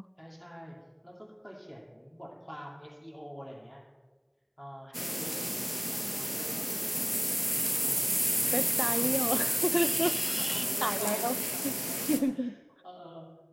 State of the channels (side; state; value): both; identical; correlation 1.00